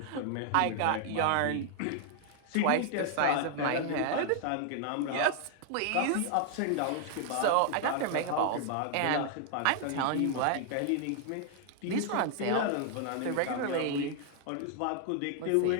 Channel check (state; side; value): different; both; correlation 0.00